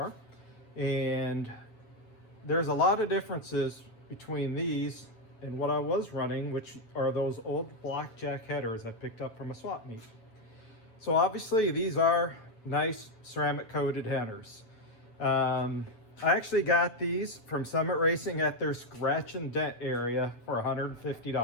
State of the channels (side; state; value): right; late; 9.1 ms